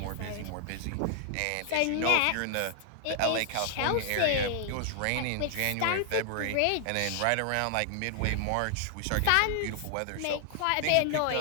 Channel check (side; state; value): both; different; correlation 0.00